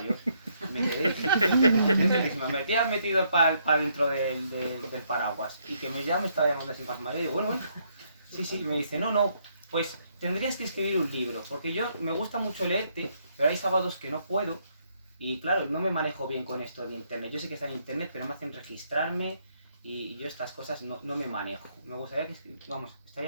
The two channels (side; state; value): both; inverted; correlation -0.72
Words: Me quedé, me has metido para dentro del paraguas y que ya me estaba llamando así más mayor. Digo, bueno, sí, me dice, no, pues tendrías que escribir un libro, porque yo me gusta mucho leerte, pero hay sábados que no puedo y claro, no me manejo bien con esto de internet. Yo sé que está en internet, pero me hacen registrarme y yo estas cosas no me manejo. Me gustaría que,